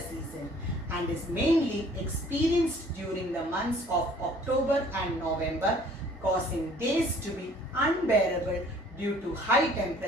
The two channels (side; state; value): both; normal; correlation 0.55